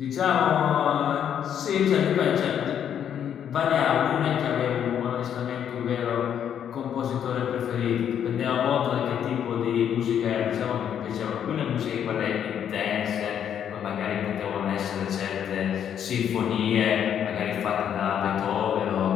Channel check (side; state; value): right; quieter; 9.1 dB